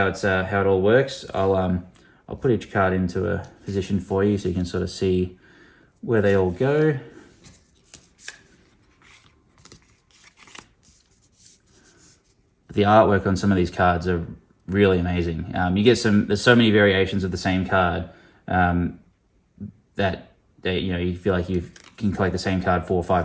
it all works. I'll put each card into a position for you so you can sort of see where they all go. The artwork on some of these cards are really amazing. There's so many variations of the same card that you feel like you can collect the same card 4 or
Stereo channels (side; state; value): both; identical; correlation 1.00